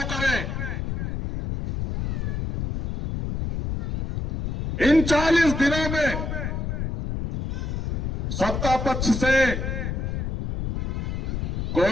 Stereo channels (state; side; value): noise; left; rumble, 2 dB below the sound